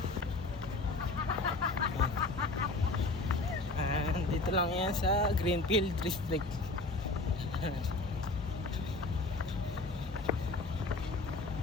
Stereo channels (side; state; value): right; quieter; 3.3 dB